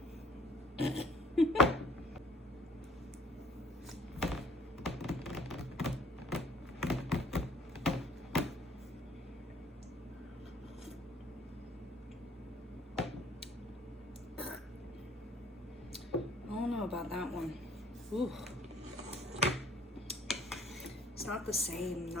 I don't know about that one. Ooh. It's not the same,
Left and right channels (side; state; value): both; normal; correlation 0.56